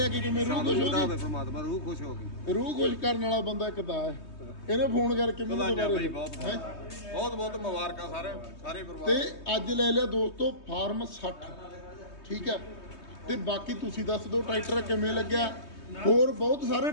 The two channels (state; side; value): late; right; 3.2 ms